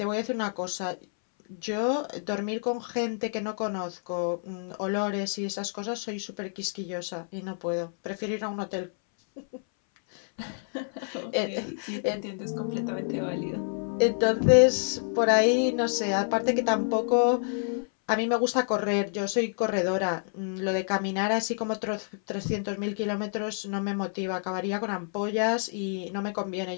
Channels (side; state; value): right; silent; 59 dB below the other